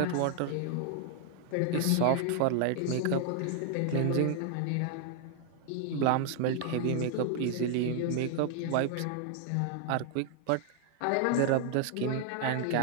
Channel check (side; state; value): both; different; correlation 0.00